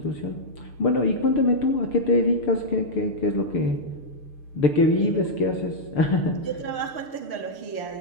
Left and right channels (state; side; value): late; right; 6.7 ms